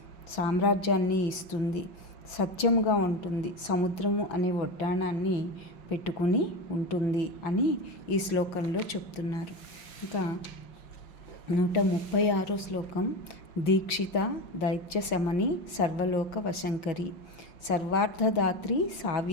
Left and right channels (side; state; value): right; late; 5.7 ms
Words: సామ్రాజ్యాన్ని ఇస్తుంది, సత్యముగా ఉంటుంది, సముద్రము అనే వడ్డాణాన్ని పెట్టుకుని ఉంటుంది అని ఈ శ్లోకంలో చెప్తున్నారు. ఇంకా 136వ శ్లోకం. దీక్షిత దైత్య శమని సర్వలోక వశంకరి సర్వార్థదాత్రి